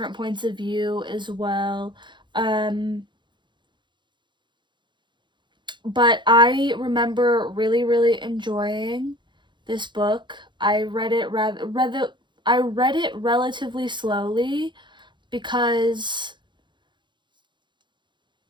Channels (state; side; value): late; left; 0.23 ms